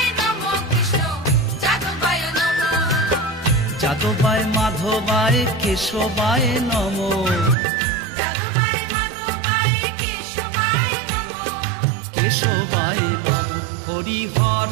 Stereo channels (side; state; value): left; drops out; at 7.6 s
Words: যাদবায় মাধবায় কেশবায় নম। কেশবায় নম। হরি